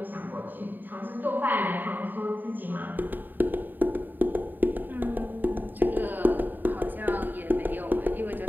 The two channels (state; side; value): late; left; 0.090 ms